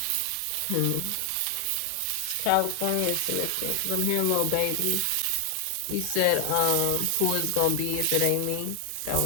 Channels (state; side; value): different; both; correlation 0.00